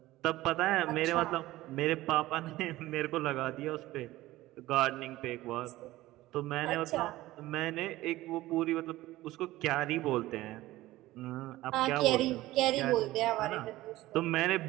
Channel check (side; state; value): left; quieter; 17.1 dB